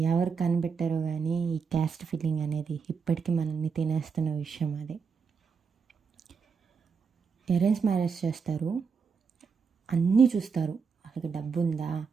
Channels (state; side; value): quieter; left; 5.7 dB